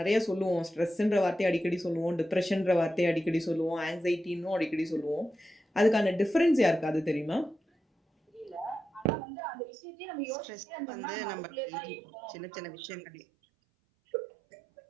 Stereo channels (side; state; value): left; drops out; at 9.1 s